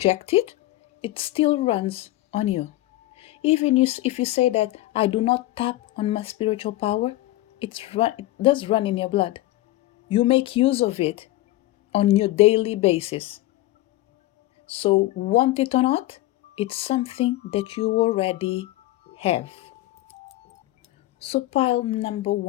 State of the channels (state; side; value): quieter; right; 16.8 dB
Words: it, it still runs on you. Even if you say that I do not tap on my spiritual power, it does run in your blood. You make use of it on your daily basis. So, want it or not, it's something that you already have. So, pile number